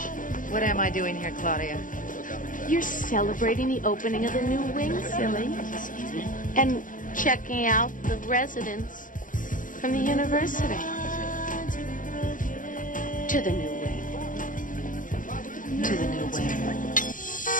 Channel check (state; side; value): late; right; 0.38 ms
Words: What am I doing here, Claudia? You're celebrating the opening of the new wing, silly. And checking out the residents from the university. To the new wing. To the new wing.